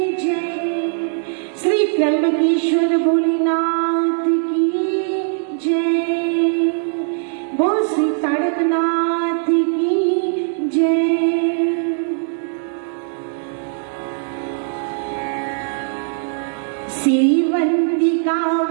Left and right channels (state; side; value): silent; left; digital silence